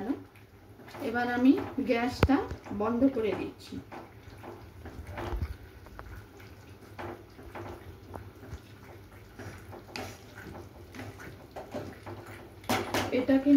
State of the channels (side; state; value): both; identical; correlation 1.00